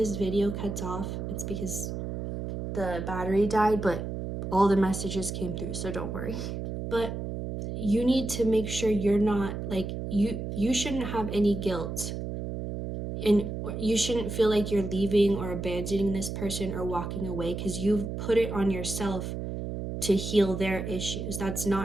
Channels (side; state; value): right; noise; hum, 5 dB below the sound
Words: video cuts off, it's because the battery died, but all the messages came through, so don't worry. But you need to make sure you're not like, you shouldn't have any guilt, and you shouldn't feel like you're leaving or abandoning this person or walking away, because you've put it on yourself to heal their issues. That's